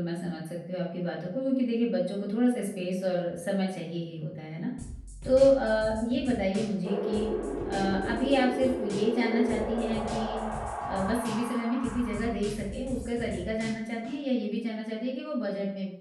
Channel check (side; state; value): both; identical; correlation 1.00